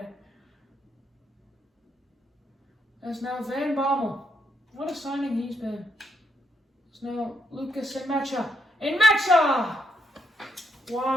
That's now Van Bommel. What a signing he's been. It's now Lucas and Mecha. And Mecha!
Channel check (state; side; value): normal; both; correlation 0.78